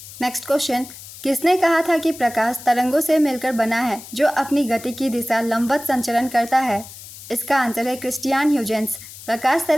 नेक्स्ट क्वेश्चन, किसने कहा था कि प्रकाश तरंगों से मिलकर बना है जो अपनी गति की दिशा लंबवत संचरण करता है? इसका आंसर है क्रिस्टियान ह्यूजेंस। प्रकाश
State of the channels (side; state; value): left; noise; hiss, 15 dB below the sound